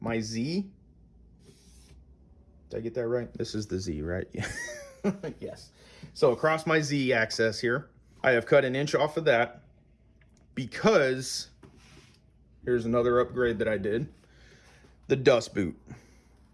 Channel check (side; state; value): both; identical; correlation 1.00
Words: Z. Did I get that right? This is the Z, right? Yes. So across my Z axis here, I have cut 1 inch off of that because here's another upgrade that I did. The dust boot.